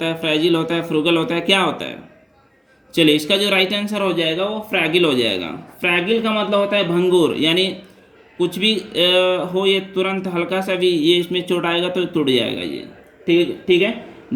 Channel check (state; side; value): identical; both; correlation 1.00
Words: है, फ्रेजिल होता है, फ्रूगल होता है, क्या होता है। चलिए इसका जो राइट आंसर हो जाएगा वो फ्रैगिल हो जाएगा। फ्रैगिल का मतलब होता है भंगुर, यानी कुछ भी हो ये तुरंत हल्का सा भी ये इसमें चोट आएगा तो टूट जाएगा ये, ठीक है।